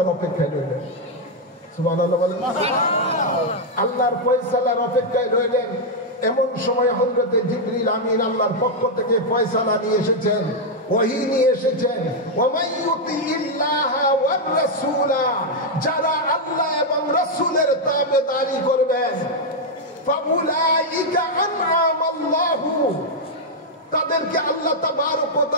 অপেক্ষায় রইলেন। সুবহানাল্লাহ বলেন। আল্লাহর ফয়সালার অপেক্ষায় রইলেন। এমন সময় হযরতে জিবরিল আমিন আল্লাহর পক্ষ থেকে ফয়সালা নিয়ে এসেছেন, ওহী নিয়ে এসেছেন। ওয়ামান ইউতিইল্লাহা ওয়ার রাসূলা, যারা আল্লাহ এবং রাসূলের তাবেদারি করবেন, ফাউলাইকা আনআমাল্লাহু, তাদেরকে আল্লাহ তাবারক ওয়া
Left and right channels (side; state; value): both; normal; correlation -0.01